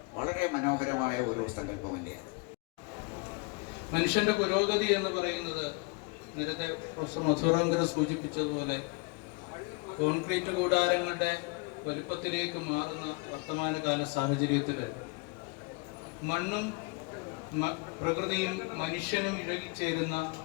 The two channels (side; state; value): right; quieter; 28.5 dB